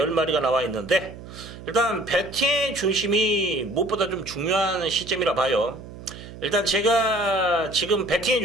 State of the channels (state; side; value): noise; right; hum, 15 dB below the sound